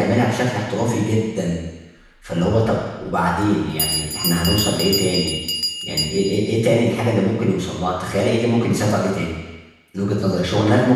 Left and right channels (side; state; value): both; identical; correlation 1.00